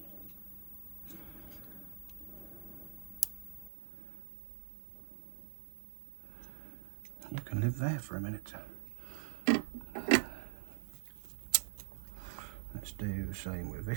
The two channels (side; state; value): left; drops out; at 3.7 s